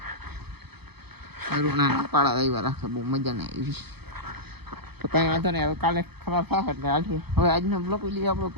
ના પાડા આવ્યા રાખે બહુ મજા નહીં આવી તો કાંઈ વાંધો નહીં, હવે કાલે ખરાબ થાય એટલે હાલશે। હવે આજનો બ્લોક વિડીયો આપણે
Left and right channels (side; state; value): left; late; 0.98 ms